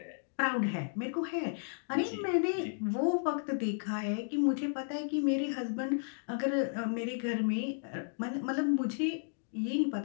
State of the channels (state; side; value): silent; right; digital silence